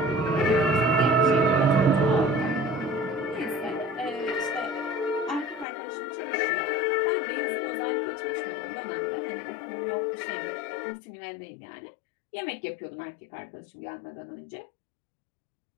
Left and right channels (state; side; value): drops out; right; at 5.7 s